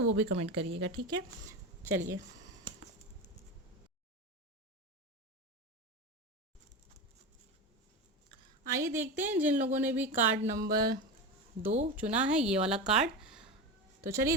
वो भी कमेंट करिएगा, ठीक है। चलिए, आइए देखते हैं जिन लोगों ने भी कार्ड नंबर 2 चुना है, ये वाला कार्ड। तो चलिए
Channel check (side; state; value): both; normal; correlation 0.22